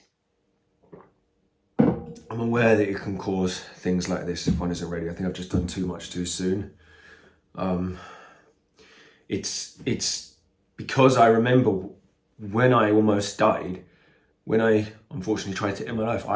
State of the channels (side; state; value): both; identical; correlation 1.00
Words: I'm aware that it can cause things like this if one isn't ready. I think I've just done too much too soon. It's because I remember when I almost died, when I unfortunately tried to end my life.